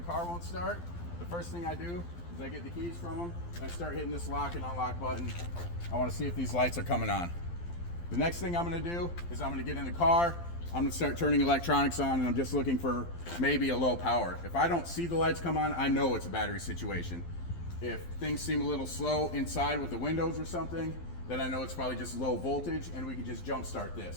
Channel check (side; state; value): right; late; 12 ms